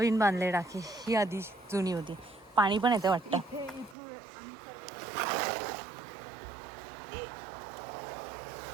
बांधले टाकी. ही आधी जुनी होती. पाणी पण येते वाटतं.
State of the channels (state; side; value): drops out; left; at 4.0 s